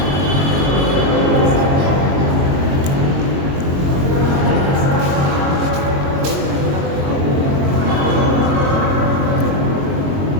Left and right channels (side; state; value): left; late; 22 ms